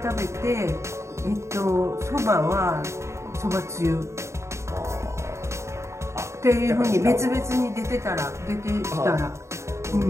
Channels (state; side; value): late; left; 0.14 ms